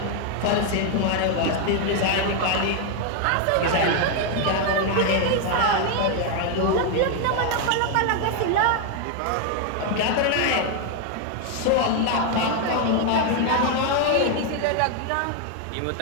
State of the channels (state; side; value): different; both; correlation 0.00